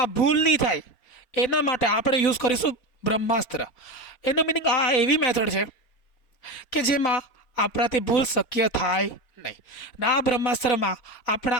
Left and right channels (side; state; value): right; late; 4.3 ms